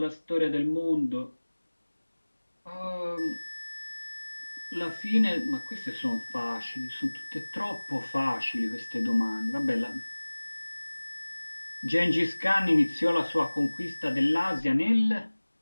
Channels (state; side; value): inverted; both; correlation -1.00